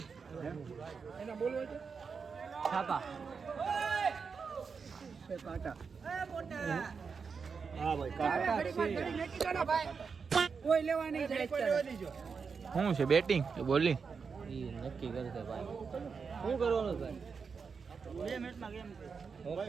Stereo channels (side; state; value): left; quieter; 5.5 dB